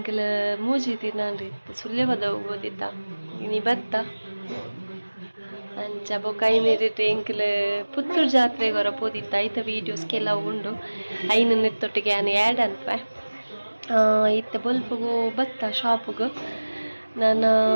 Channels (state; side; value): inverted; both; correlation -1.00